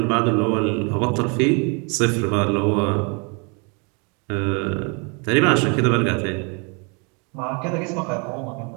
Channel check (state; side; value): quieter; left; 33.5 dB